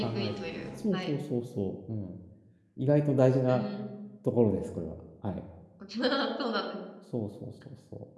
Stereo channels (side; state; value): both; identical; correlation 1.00